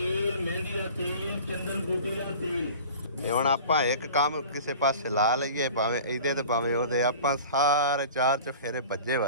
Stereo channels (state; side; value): inverted; both; correlation -0.42